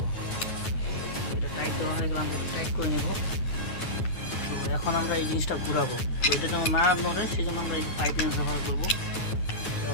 এটা টাইট দেওয়া হয়ে গেলে আমরা টাইট করে নেব। তো এখন আমরা এই জিনিসটা ঘুরাবো। তো এটা যেমন না নড়ে, সেই জন্য আমরা এই পাইপ লাইন ব্যবহার করবো। তো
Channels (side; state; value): right; late; 9.2 ms